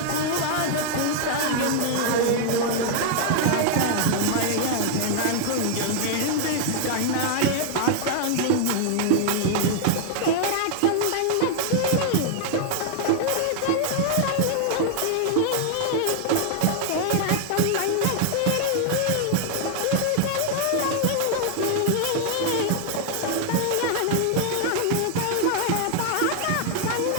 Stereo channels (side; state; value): both; different; correlation 0.00